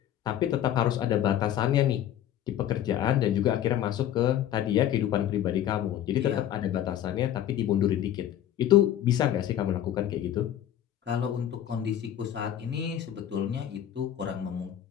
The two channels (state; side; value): quieter; right; 11.2 dB